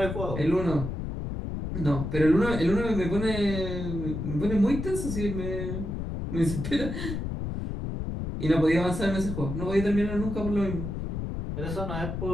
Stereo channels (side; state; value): left; noise; rumble, 5 dB below the sound